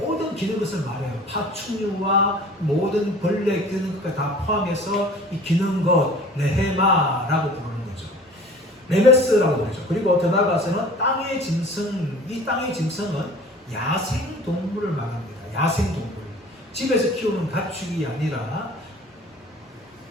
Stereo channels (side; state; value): both; normal; correlation 0.45